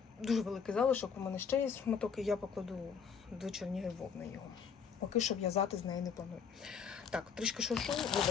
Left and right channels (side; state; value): right; quieter; 6.6 dB